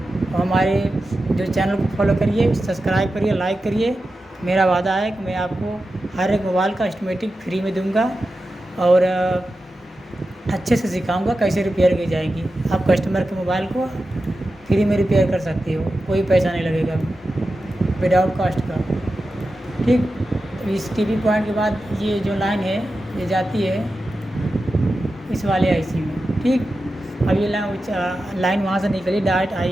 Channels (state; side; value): normal; both; correlation 0.92